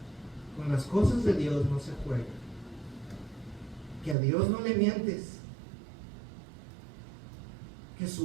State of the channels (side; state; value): left; drops out; at 4.2 s